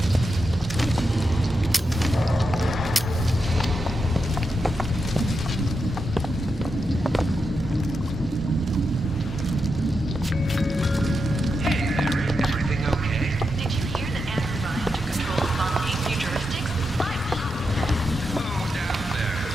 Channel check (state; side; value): normal; both; correlation 0.86